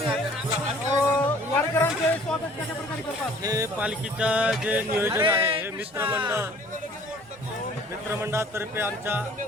वारकऱ्यांचे स्वागत कशा प्रकारे करतात? हे पालखीचं जे नियोजन आहे हे मित्रमंडळातर्फे आमच्या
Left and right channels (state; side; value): normal; both; correlation 0.53